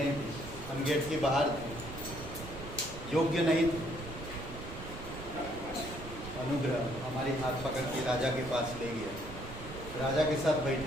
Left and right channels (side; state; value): right; noise; rumble, 11 dB below the sound